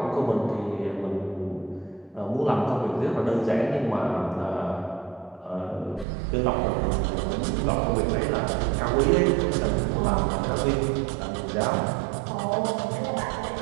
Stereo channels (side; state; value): left; drops out; at 6.1 s